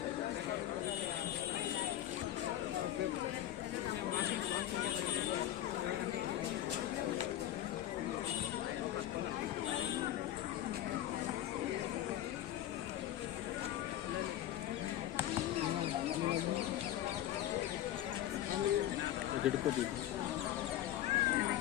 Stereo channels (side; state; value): right; quieter; 12.9 dB